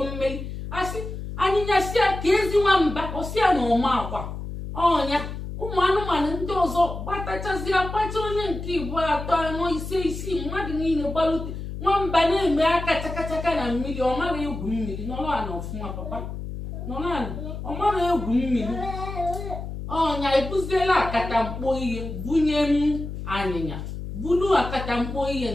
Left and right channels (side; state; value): left; noise; hum, 7 dB below the sound